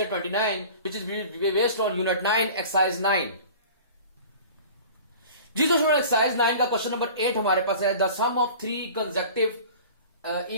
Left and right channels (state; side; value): inverted; both; correlation -0.42